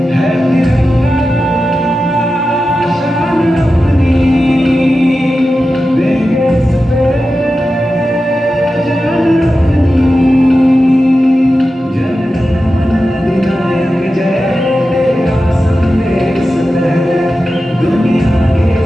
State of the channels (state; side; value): normal; both; correlation 0.92